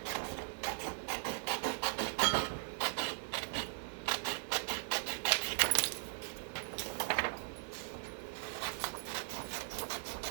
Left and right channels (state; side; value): silent; left; digital silence